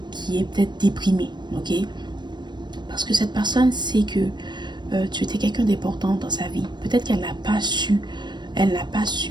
qui est peut-être déprimé. Ok? Parce que cette personne sait que tu étais quelqu'un d'important dans sa vie. Peut-être qu'elle n'a pas su,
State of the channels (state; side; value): late; left; 0.22 ms